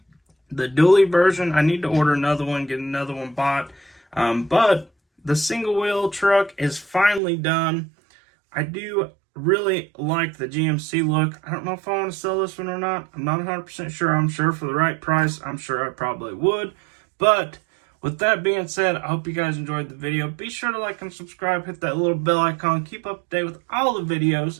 the dually version. I need to order another one, get another one bought. But the single wheel truck is finally done. I do really like the GMC look. I don't know if I want to sell this one or not. I'm not 100% sure. I'm sure for the right price, I'm sure I probably would. But with that being said, I hope you guys enjoyed the video. Be sure to like and subscribe, hit that little bell icon, keep up to date with all the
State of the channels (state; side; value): drops out; left; at 7.2 s